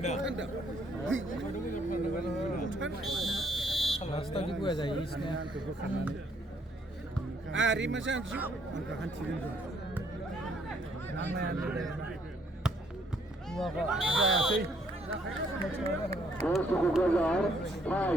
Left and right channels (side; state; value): both; normal; correlation 0.68